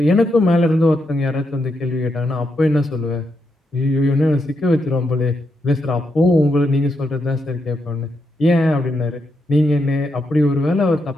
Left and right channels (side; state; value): both; normal; correlation 0.82